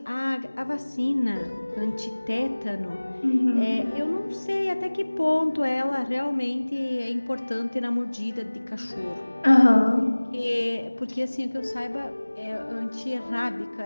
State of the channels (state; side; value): inverted; both; correlation -1.00